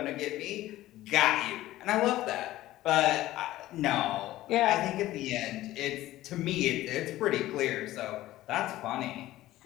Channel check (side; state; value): right; quieter; 15.5 dB